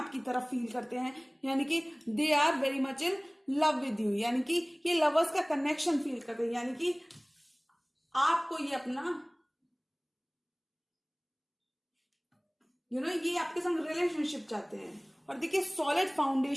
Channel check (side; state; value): both; identical; correlation 1.00